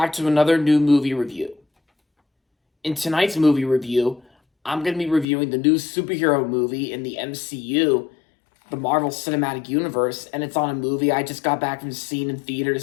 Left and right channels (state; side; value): drops out; right; at 5.2 s